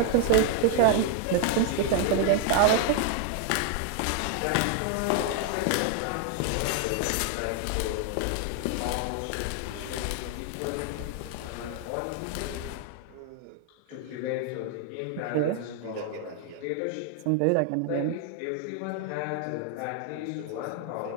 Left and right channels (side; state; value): both; different; correlation 0.00